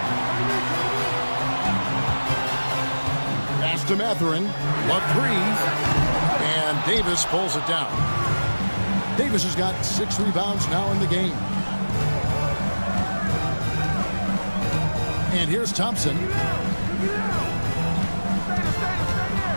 Pass to Mathurin. A 3. And Davis pulls it down. Davis has got 6 rebounds now in the game. And here's Thompson.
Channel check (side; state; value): both; inverted; correlation -1.00